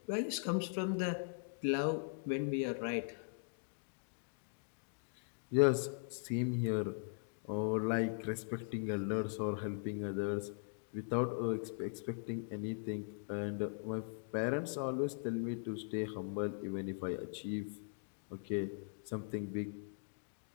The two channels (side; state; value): right; silent; digital silence